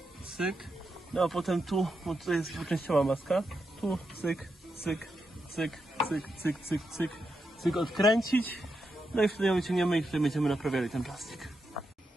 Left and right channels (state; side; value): normal; both; correlation 0.85